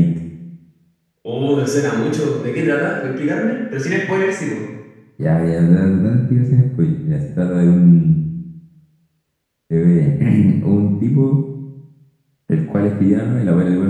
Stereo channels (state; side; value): identical; both; correlation 1.00